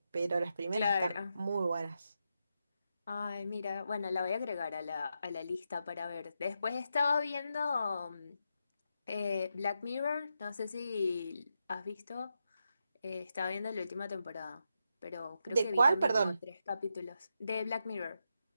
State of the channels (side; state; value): both; inverted; correlation -0.85